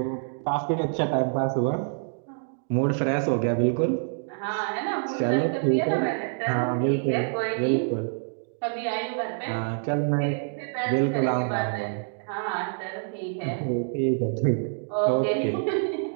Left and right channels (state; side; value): silent; left; digital silence